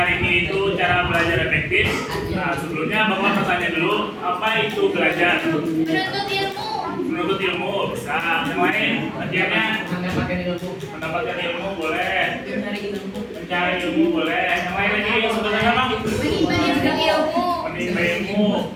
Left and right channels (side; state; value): both; identical; correlation 1.00